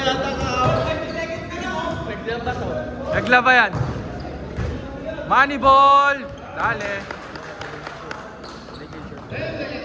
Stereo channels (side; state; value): both; identical; correlation 1.00